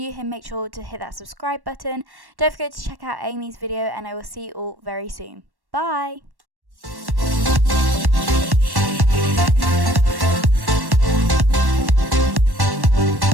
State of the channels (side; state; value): left; late; 1.1 ms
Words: here, make sure to hit that subscribe button. Don't forget to check out Amy's video, and I will see you all very soon. Bye!